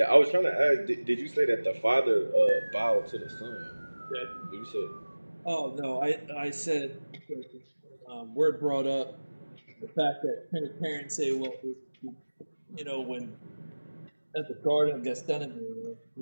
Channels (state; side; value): inverted; both; correlation -1.00